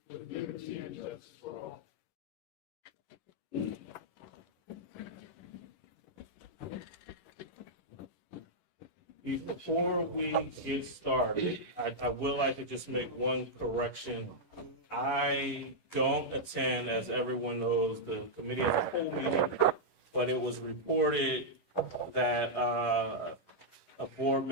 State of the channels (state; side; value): late; right; 11 ms